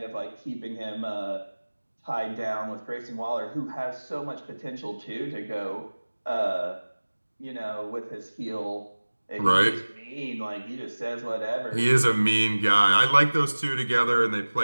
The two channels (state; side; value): inverted; both; correlation -1.00